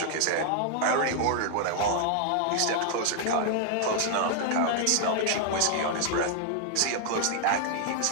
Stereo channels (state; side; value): different; both; correlation 0.00